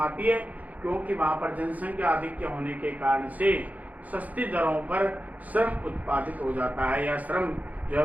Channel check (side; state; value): left; late; 0.077 ms